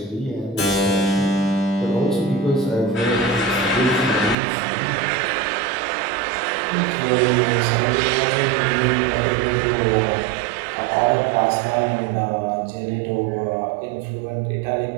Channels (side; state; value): left; drops out; at 4.4 s